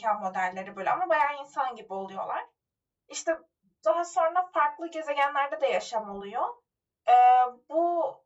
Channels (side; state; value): both; identical; correlation 1.00